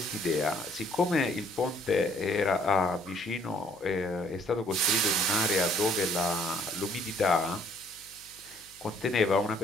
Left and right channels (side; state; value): left; noise; hum, 29 dB below the sound